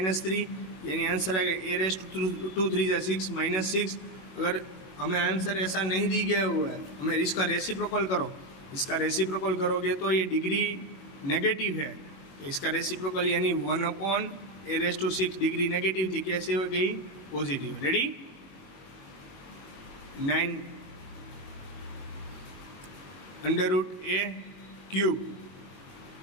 यानी आंसर आएगा ए रेस्ट टू 3 जा 6 -6। अगर हमें आंसर ऐसा नहीं दी गया हुआ है, हमें इसका रेसिप्रोकल करो, इसका रेसिप्रोकल करोगे तो ये डिग्री नेगेटिव है, तो इसका रेसिप्रोकल यानी 1/a⁻6 डिग्री नेगेटिव थी, कैसे हो गई पॉजिटिव। रेडी 9 √a³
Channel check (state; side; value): late; right; 21 ms